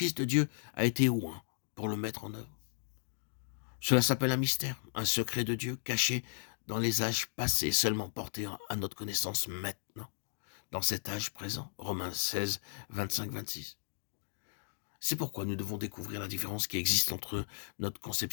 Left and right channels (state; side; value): silent; right; digital silence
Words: de Dieu a été oint pour le mettre en œuvre. Cela s'appelle un mystère, un secret de Dieu caché dans les âges passés, seulement porté à notre connaissance maintenant, dans cet âge présent. Romains 16, 25-26. C'est pourquoi nous devons découvrir la différence qui existe entre notre